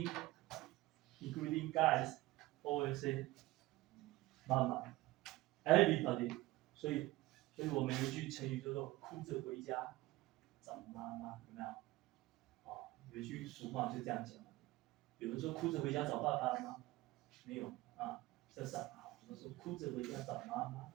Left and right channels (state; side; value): quieter; left; 18.8 dB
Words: guys, always say 妈妈 everybody. 所以我们有一句成语叫做哭着回家找妈妈，有没有？有一句俗话就这样讲。有人说哭着回家找爸爸吗？没有啊，这是好。我们说哭着回家找妈妈。